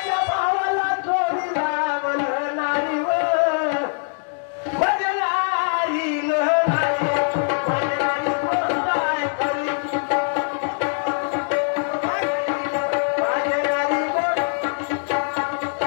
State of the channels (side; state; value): right; silent; 60 dB below the other